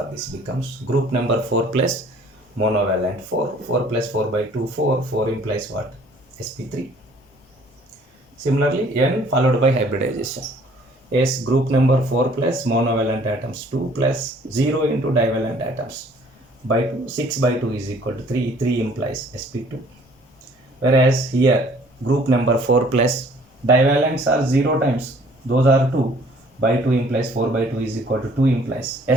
this becomes group number 4 plus monovalent 4. 4 plus 4 by 2, 4. 4 implies what? sp3. Similarly, n followed by hybridization. S group number 4 plus monovalent atoms 2 plus 0 into divalent atoms by 2. 6 by 2 is equal to 3. 3 implies sp2. Whereas here group number 4 plus divalents are 0 times. Those are 2. By 2 implies 4 by 2 is equal to 2 implies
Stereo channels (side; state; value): both; normal; correlation 0.56